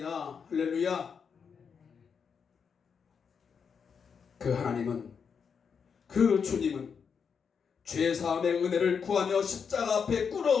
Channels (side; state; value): right; quieter; 6.4 dB